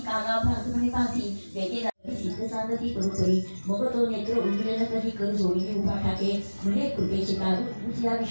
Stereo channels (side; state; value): both; inverted; correlation -1.00